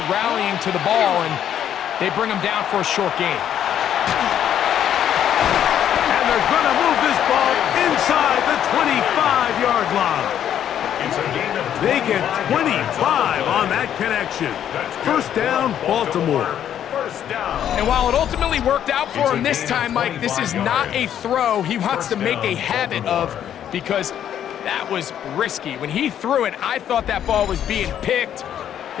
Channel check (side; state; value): right; quieter; 10.0 dB